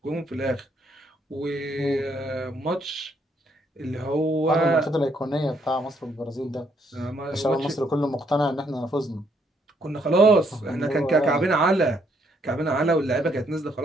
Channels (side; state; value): both; normal; correlation 0.71